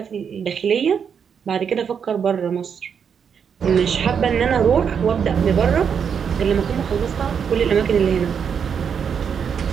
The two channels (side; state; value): left; quieter; 7.1 dB